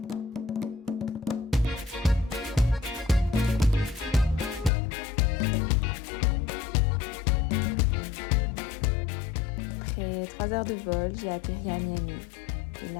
Après 3 heures de vol, j'ai atterri à Miami. Et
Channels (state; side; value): drops out; right; at 4.7 s